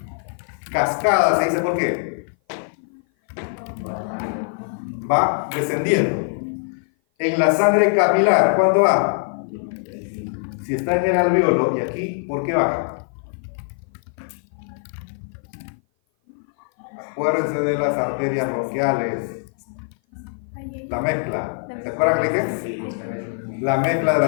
Cascada se dice ¿por qué? Va descendiendo. En la sangre capilar, ¿cuánto va? Si está en el alveolo y aquí, ¿por qué baja? Acuérdense de las arterias bronquiales. La mezcla. ¿Se acuerdan que le dije? La mezcla de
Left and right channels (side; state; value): right; silent; 56 dB below the other